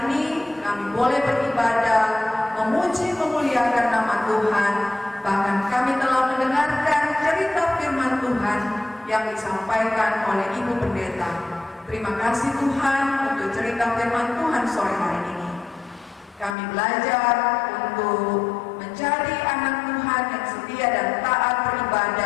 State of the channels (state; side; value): drops out; right; at 16.6 s